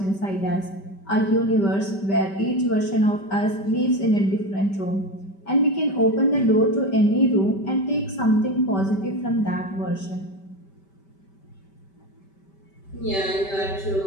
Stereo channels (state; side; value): late; right; 5.1 ms